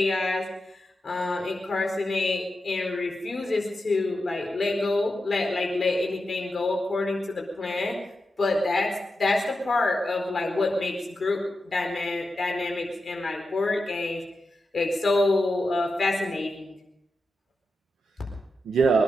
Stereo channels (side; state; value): both; normal; correlation 0.89